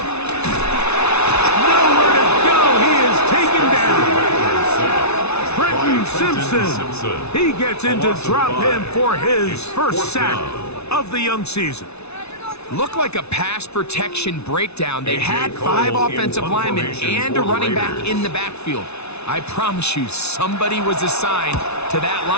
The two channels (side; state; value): right; late; 0.81 ms